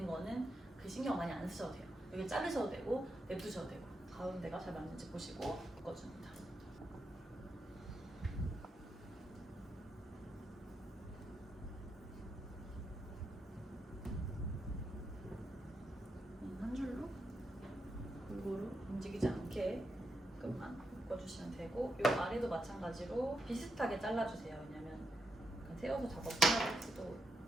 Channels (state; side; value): normal; both; correlation 0.83